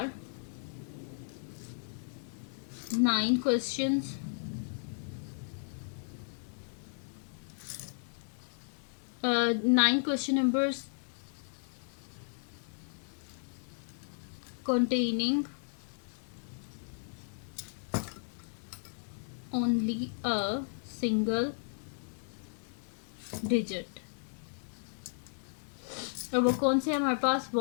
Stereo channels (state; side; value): silent; right; digital silence